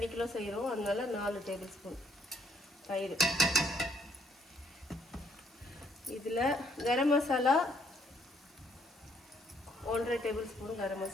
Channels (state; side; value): normal; both; correlation 0.67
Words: கிலோ செய்கிறோம், அதனால 4 டேபிள் ஸ்பூன் தயிர். இதில் கரம் மசாலா 1.5 டேபிள் ஸ்பூன் கரம்